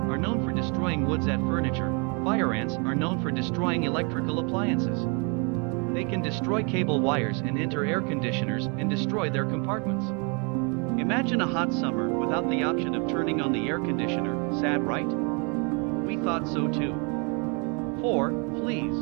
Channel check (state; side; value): quieter; left; 34.5 dB